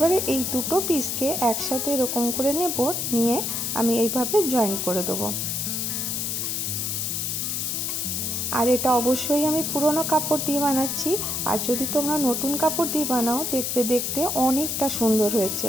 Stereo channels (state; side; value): noise; left; hiss, 1 dB below the sound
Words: এই দুটো পিসকে একসাথে এরকম করে নেব, নিয়ে আমি এইভাবে জয়েন করে দেবো। আর এটা অবশ্যই আমি পুরনো কাপড় দিয়ে বানাচ্ছি। আর যদি তোমরা নতুন কাপড় দিয়ে বানাও দেখবে দেখতে অনেকটা সুন্দর হয়েছে।